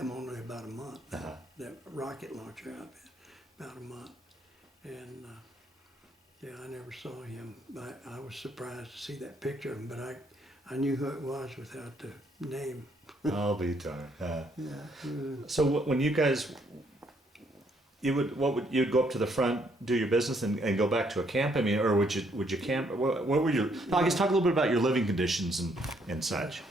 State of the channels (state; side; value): normal; both; correlation 0.70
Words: only about a month. That rocket launcher outfit, about a month, and yeah, I never saw him. I was surprised to see that picture of him, but I knew who it was without the name. I'll be darned. Yeah. So when you guys, you'd go up to the front, do your business, and go back to a camp? I mean, or would you camp? What were your? I guess talk a little bit about your living conditions and such.